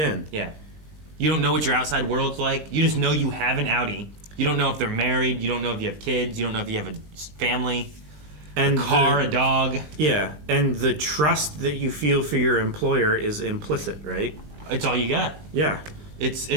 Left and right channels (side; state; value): left; late; 20 ms